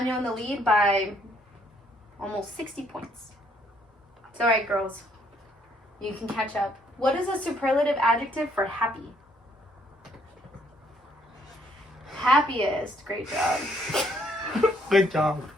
in the lead by almost 60 points. It's all right, girls. You can catch up. What is a superlative adjective for happy? Happiest. Great job. Good job.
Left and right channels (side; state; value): both; normal; correlation 0.68